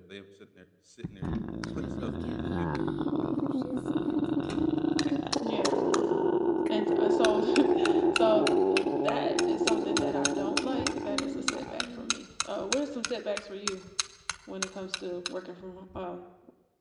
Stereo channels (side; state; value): both; identical; correlation 1.00